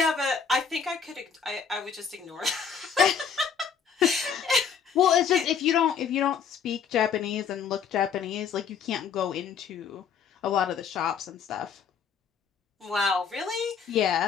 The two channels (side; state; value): right; quieter; 6.6 dB